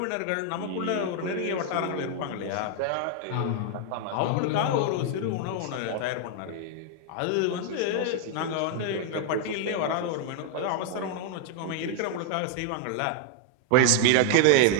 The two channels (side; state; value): both; different; correlation 0.00